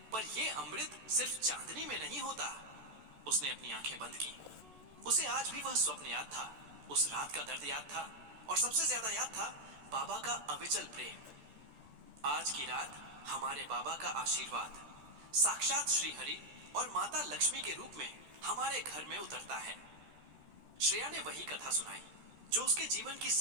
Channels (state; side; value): late; left; 13 ms